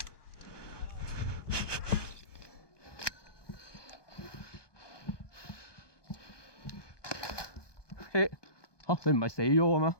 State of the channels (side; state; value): right; late; 1.2 ms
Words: 嚇你唔係死咗嘅咩